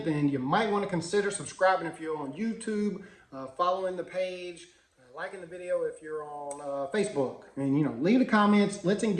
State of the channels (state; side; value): identical; both; correlation 1.00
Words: then you might want to consider subscribing if you're on YouTube, following the page, liking the video if you're on Facebook. And, leave the comments. Let's